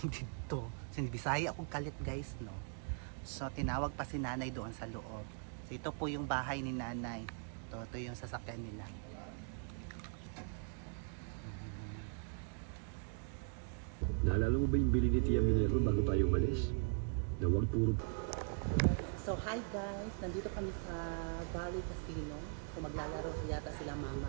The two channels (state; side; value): silent; left; 51 dB below the other